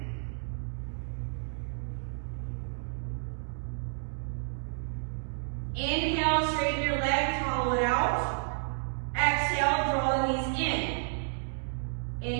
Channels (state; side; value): silent; left; digital silence